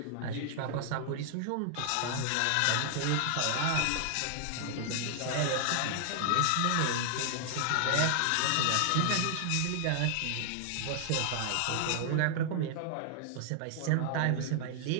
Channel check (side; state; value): both; different; correlation 0.00